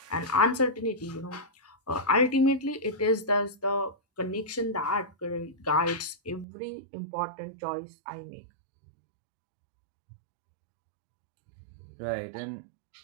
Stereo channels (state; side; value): drops out; left; at 6.5 s